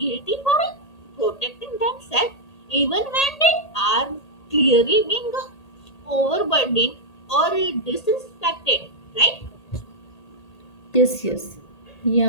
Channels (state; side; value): late; right; 1.8 ms